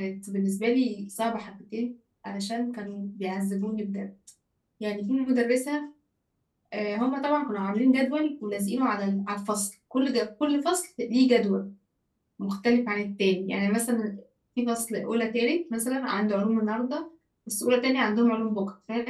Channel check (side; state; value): both; identical; correlation 1.00